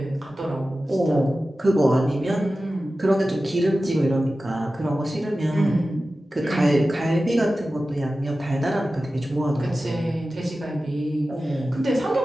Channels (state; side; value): normal; both; correlation 0.95